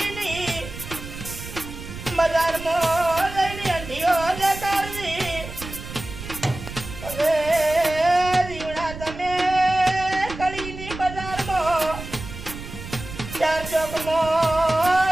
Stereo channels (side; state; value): right; noise; rumble, 11 dB below the sound